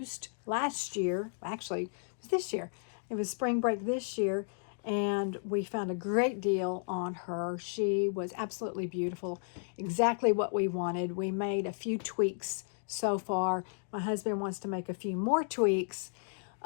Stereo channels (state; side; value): silent; right; digital silence